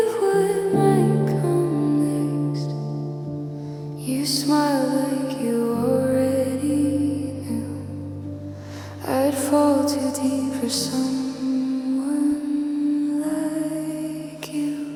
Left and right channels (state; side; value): identical; both; correlation 1.00